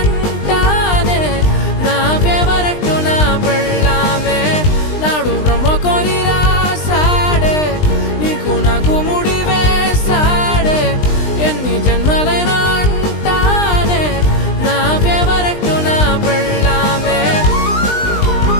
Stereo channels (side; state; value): right; late; 20 ms